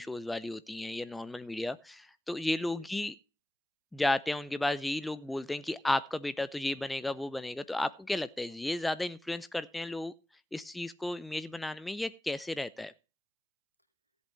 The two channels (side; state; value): both; normal; correlation 0.96